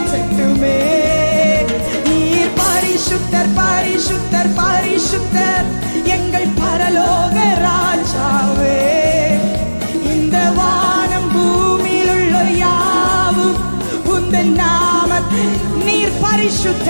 நீர் பரிசுத்தர் பரிசுத்தர் பரிசுத்தர் எங்கள் பரலோக ராஜாவே. இந்த வானம் பூமியில் உள்ள யாவும் உந்தன் நாமத்தை. நீர்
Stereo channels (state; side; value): inverted; both; correlation -1.00